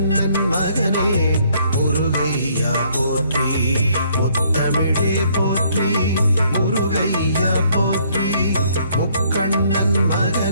மகனே முருகையா போற்றி முத்தமிழே போற்றி முருகையா போற்றி முக்கண்ணன்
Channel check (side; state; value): both; inverted; correlation -0.65